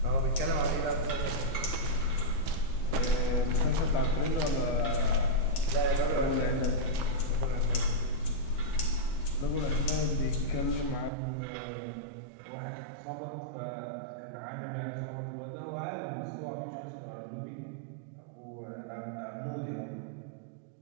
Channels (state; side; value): drops out; left; at 11.1 s